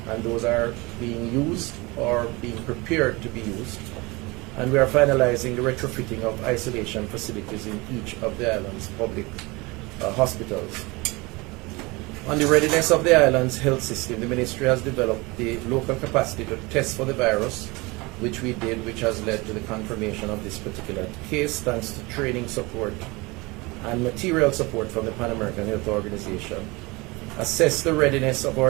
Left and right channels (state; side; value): quieter; left; 24.5 dB